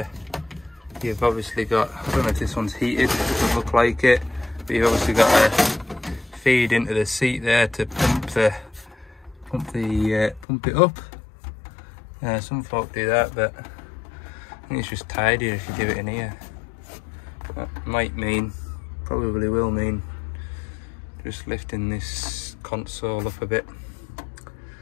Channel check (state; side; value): drops out; right; at 10.5 s